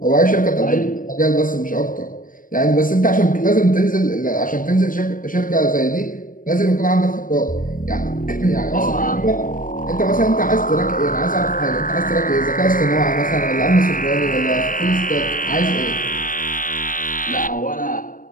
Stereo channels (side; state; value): right; late; 0.40 ms